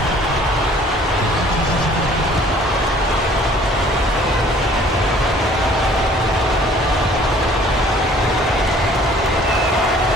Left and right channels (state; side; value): normal; both; correlation 0.55